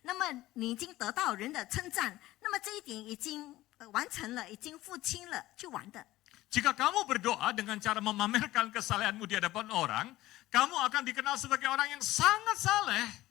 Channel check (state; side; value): quieter; right; 16.7 dB